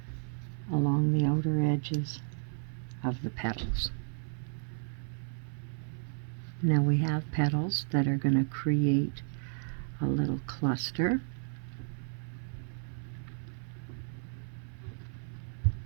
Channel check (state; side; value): silent; left; 56 dB below the other